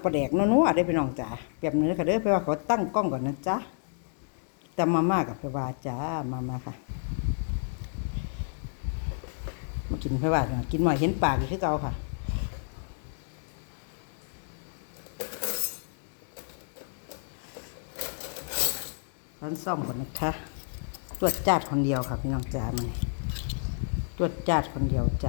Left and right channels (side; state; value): right; silent; digital silence